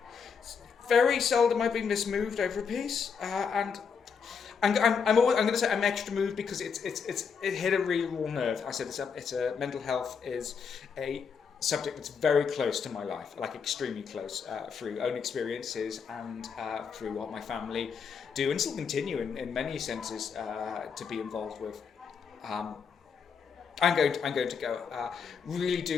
Very seldom I've been this moved over a piece, and I'm going to say I'm extra moved because it hit a really raw nerve. I said it's a mental health is a subject that's very close to my life, like extremely close, through own experiences and through what my family do and still continue in many senses to be involved with. I'm going to go. Really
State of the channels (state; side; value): quieter; right; 6.2 dB